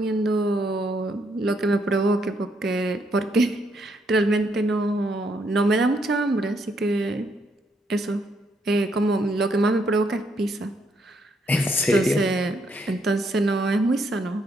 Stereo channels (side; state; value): both; normal; correlation 0.74